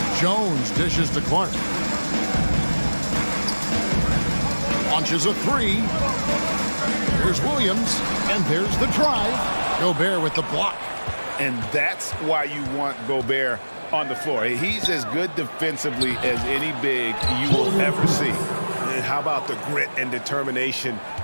Jones dishes to Clark. Launches a 3. There's Williams. And there's the drive. Gobert with the block. And that's why you want Gobert on the floor. He's as good defensively as any big you will ever see. And how about the grit and determination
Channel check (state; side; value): inverted; both; correlation -1.00